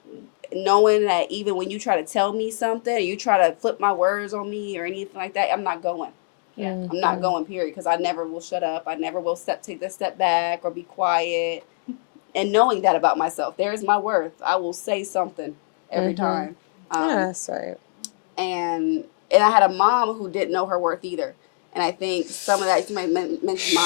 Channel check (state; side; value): silent; right; digital silence